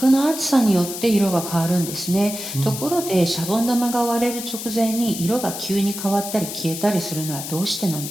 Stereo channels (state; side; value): noise; left; hiss, 8 dB below the sound